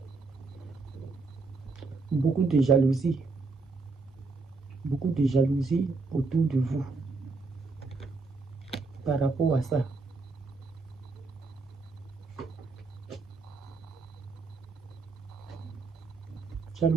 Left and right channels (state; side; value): quieter; left; 3.9 dB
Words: Beaucoup de jalousie autour de vous par rapport à ça.